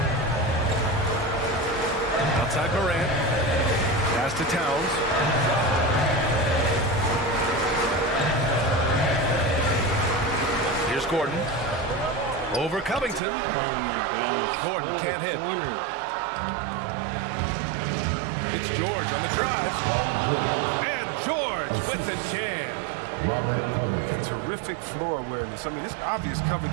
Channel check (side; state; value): left; drops out; at 13.2 s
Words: Outside Morant. Pass to Towns. Here's Gordon. Over Covington. Oh my gosh. Gordon can't hit. It's George on the drive. And George with the jam. Robert Covington. Terrific floor awareness. I mean, it's obvious